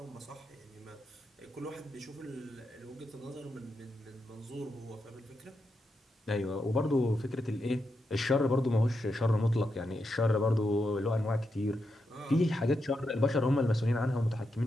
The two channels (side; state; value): both; normal; correlation 0.85